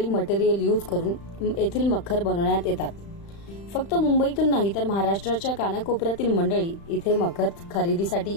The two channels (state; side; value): late; right; 35 ms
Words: मटेरियल यूज करून येथील मखर बनवण्यात येतात। फक्त मुंबईतून नाही तर महाराष्ट्राच्या कानाकोपऱ्यातील मंडळी इथे मखर खरेदीसाठी